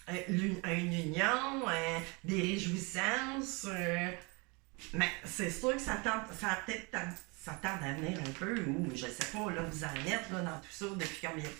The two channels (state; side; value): quieter; left; 29.2 dB